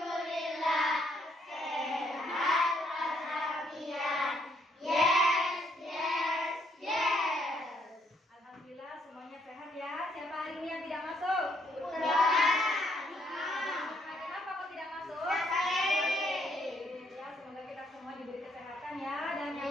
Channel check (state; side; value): normal; both; correlation 0.70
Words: sehat walafiat. Yes, yes, yes. Alhamdulillah semuanya sehat ya. Siapa hari ini yang tidak masuk? Udah. Kenapa kok tidak masuk? Ya, semoga kita semua diberi kesehatan ya, dan